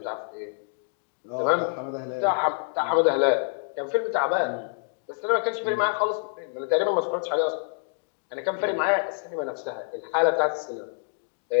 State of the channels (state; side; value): silent; right; 60 dB below the other